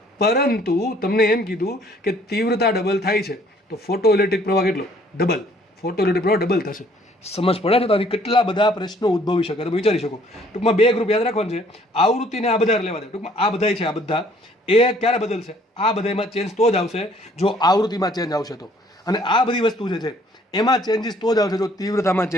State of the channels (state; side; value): normal; both; correlation 0.60